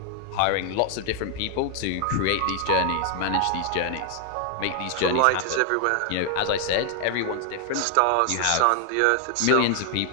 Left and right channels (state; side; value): different; both; correlation 0.00